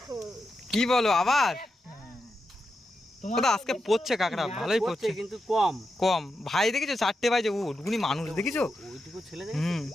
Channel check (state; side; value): normal; both; correlation 0.88